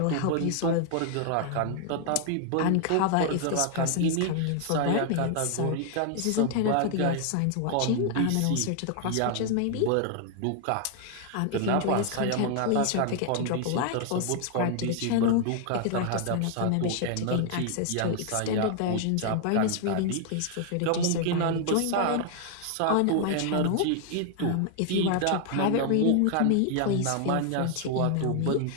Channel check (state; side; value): different; both; correlation 0.00